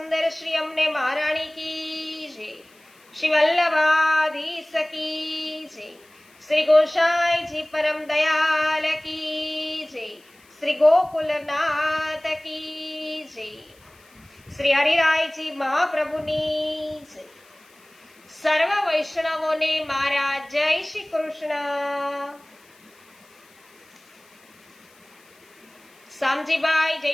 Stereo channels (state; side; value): noise; left; hiss, 29 dB below the sound